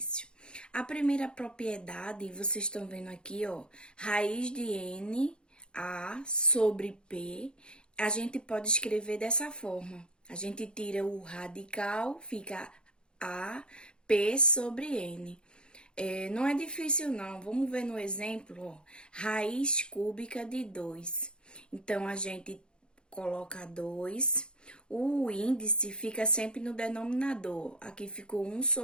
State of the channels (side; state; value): right; late; 0.051 ms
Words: A primeira propriedade, vocês estão vendo aqui, ó, raiz de n a sobre p, a gente pode escrever dessa forma. A gente tira o radical, fica a p sobre n. Não é difícil, não. Vamos ver no exemplo, ó. Raiz cúbica de 2. Então, a gente coloca 2. O índice fica sempre no denominador. Aqui ficou 1